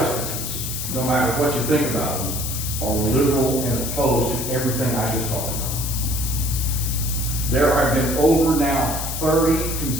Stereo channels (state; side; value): noise; left; hiss, 5 dB below the sound